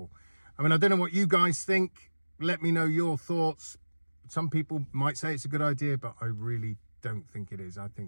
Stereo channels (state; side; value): inverted; both; correlation -1.00